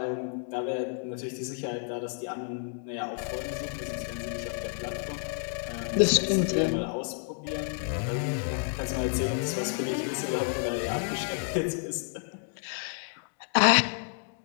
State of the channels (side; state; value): right; silent; 58 dB below the other